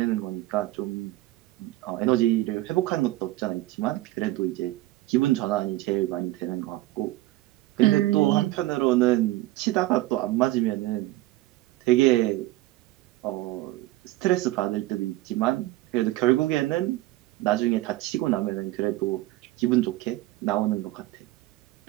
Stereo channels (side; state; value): left; quieter; 17.2 dB